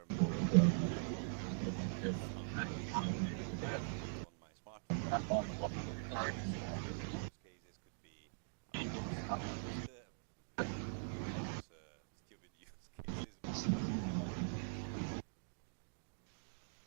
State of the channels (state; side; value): silent; left; digital silence